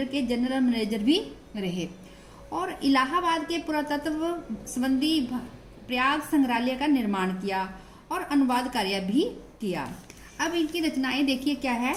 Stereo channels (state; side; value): identical; both; correlation 1.00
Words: के जनरल मैनेजर भी रहे और इलाहाबाद के पुरातत्व संबंधी प्रयाग संग्रहालय का निर्माण किया और अनुवाद कार्य भी किया। अब इनकी रचनाएं देखिए क्या है।